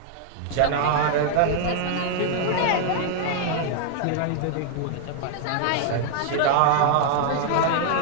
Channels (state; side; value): different; both; correlation 0.00